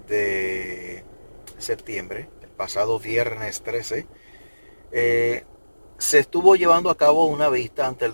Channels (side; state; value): both; inverted; correlation -1.00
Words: de septiembre, el pasado viernes 13. eh, Se estuvo llevando a cabo una vista ante